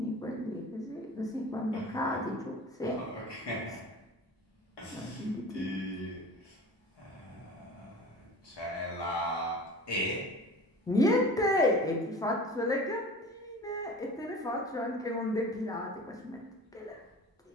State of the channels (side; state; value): both; normal; correlation 0.39